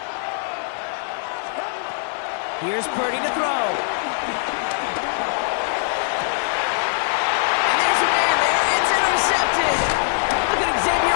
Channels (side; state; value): right; silent; 62 dB below the other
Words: Here's Purdy to throw. And there's a man there. It's intercepted. Look at